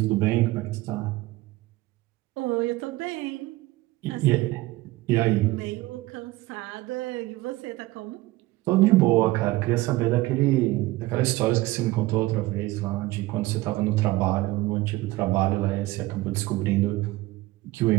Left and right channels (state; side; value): quieter; left; 18.8 dB